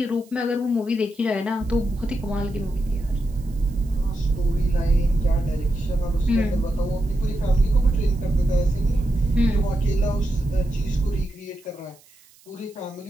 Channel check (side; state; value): right; noise; hiss, 28 dB below the sound